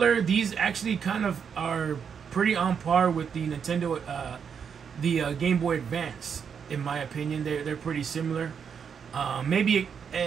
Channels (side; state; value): left; quieter; 7.0 dB